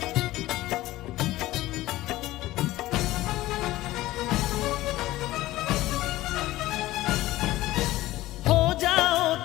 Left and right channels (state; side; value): quieter; right; 16.8 dB